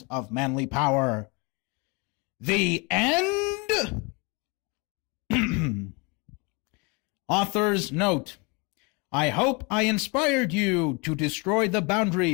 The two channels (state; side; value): quieter; right; 29.6 dB